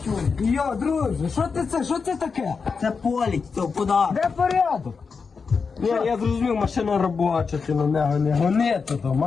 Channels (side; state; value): right; quieter; 5.2 dB